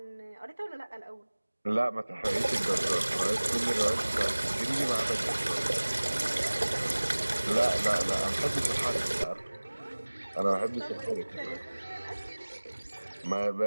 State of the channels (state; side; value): inverted; both; correlation -1.00